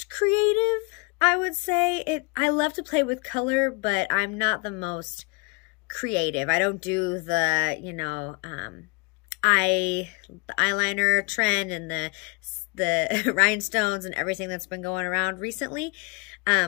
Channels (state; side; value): quieter; right; 31.2 dB